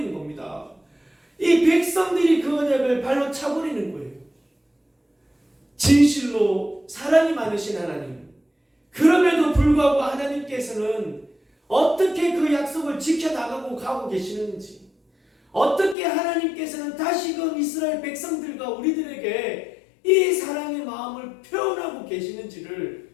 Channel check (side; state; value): right; drops out; at 16.0 s